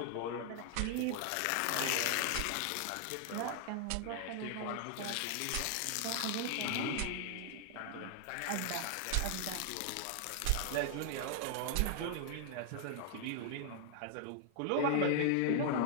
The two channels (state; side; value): different; both; correlation 0.00